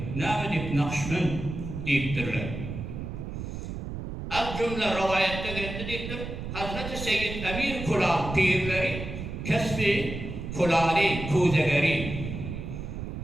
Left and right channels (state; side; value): noise; right; rumble, 7 dB below the sound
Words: Ne deyip Nakşibend deyiptirler. Az cümle rivayette geldi deyiptir. Hazreti Seyyid Emir Kulal pirleri kesbi kulali kuzegeri